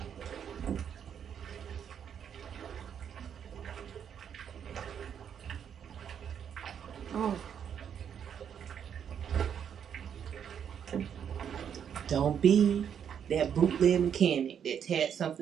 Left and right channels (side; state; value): left; quieter; 8.3 dB